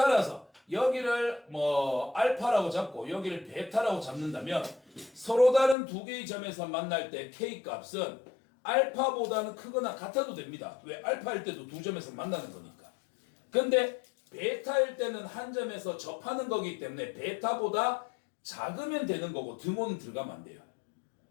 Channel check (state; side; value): drops out; right; at 5.8 s